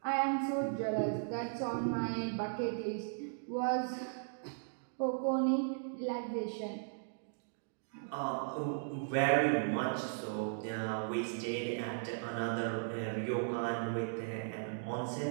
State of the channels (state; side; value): silent; left; digital silence